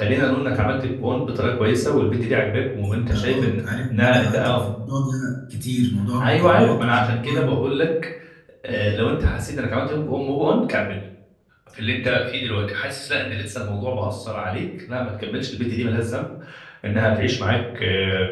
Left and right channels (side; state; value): both; identical; correlation 1.00